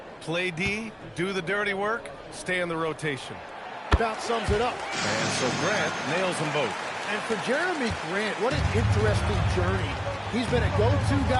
Play D, do the dirty work, stay in the rotation. About sums it up. And so Grant nails them both. And for Jeremy Grant, what an interesting journey. He's been a go-to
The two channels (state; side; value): identical; both; correlation 1.00